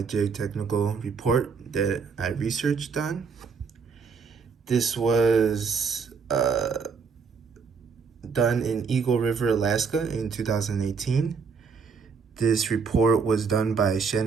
geotechnical report that I researched on. This was done in Eagle River, Alaska in 2018. This report was done by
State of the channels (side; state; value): left; quieter; 5.5 dB